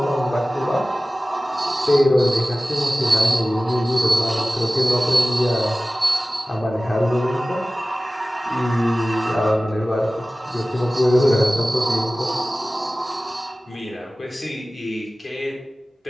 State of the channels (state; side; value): normal; both; correlation 0.97